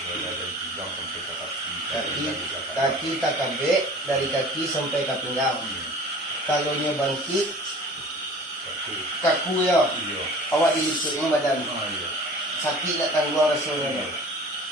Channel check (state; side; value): normal; both; correlation 0.43